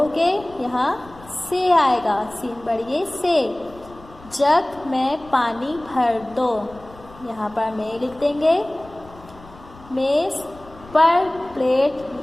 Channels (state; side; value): noise; left; rumble, 22 dB below the sound